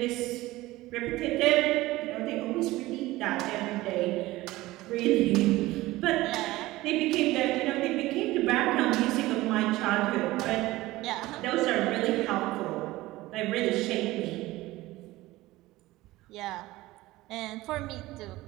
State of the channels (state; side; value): quieter; left; 18.2 dB